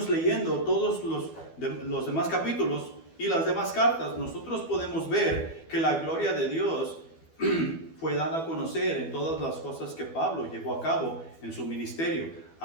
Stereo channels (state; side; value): late; right; 12 ms